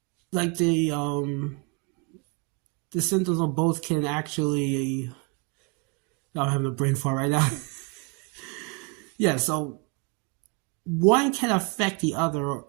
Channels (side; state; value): left; quieter; 30.4 dB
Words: like the symptoms of both can actually. I'm having a brain fart right now. Yeah, so one can affect the other,